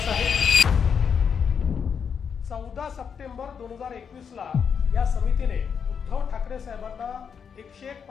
आहे। 14 सप्टेंबर 2021 ला या समितीने उद्धव ठाकरे साहेबांना 101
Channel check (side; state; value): right; quieter; 6.8 dB